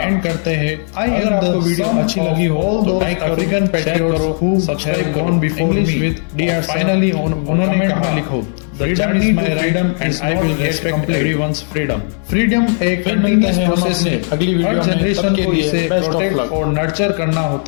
एंड करते हैं अगर आपको वीडियो अच्छी लगी हो तो like African patriots who subscribe gone before me with DR. Finally उन्होंने कहा लिखो Freedom is my right and I will respect everyone's freedom. Freedom एक कंटिन्यूअस प्रोसेस है। अगली वीडियो में जनरेशन को इसे प्रोटेक्ट और नर्चर करना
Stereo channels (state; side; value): silent; right; 56 dB below the other